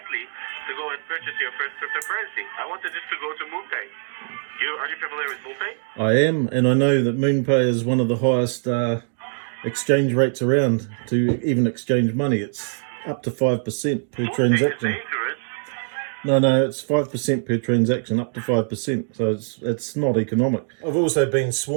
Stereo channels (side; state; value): left; silent; digital silence